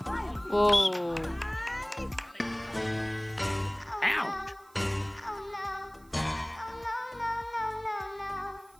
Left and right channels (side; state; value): right; noise; hiss, 28 dB below the sound